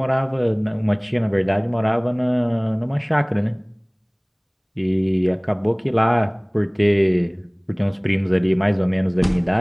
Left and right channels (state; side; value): identical; both; correlation 1.00